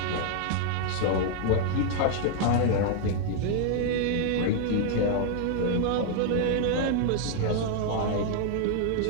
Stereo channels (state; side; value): different; both; correlation 0.00